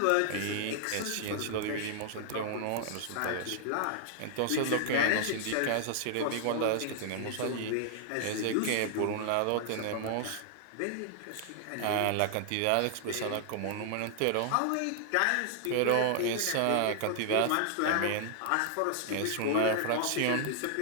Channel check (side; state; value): both; different; correlation 0.00